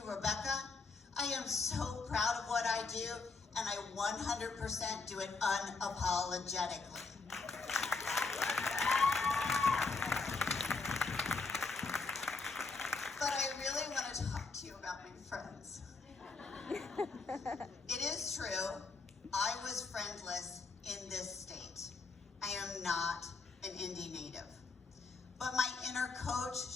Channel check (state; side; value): quieter; right; 4.1 dB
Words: Rebecca. I am so proud of what I do, and I 100% do it unapologetically. But I really want to talk to you about my friends. It is true, I was friendless in this state. I am not an Indy native. But my inner coach,